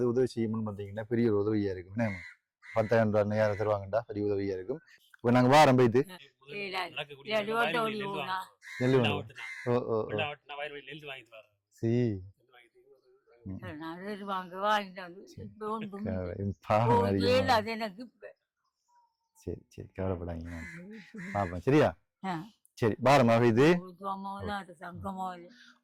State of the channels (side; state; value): both; identical; correlation 1.00